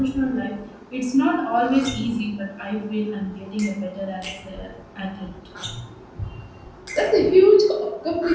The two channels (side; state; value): both; identical; correlation 1.00